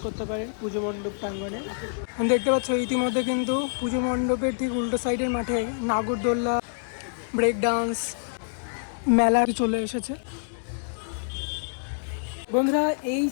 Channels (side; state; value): right; silent; digital silence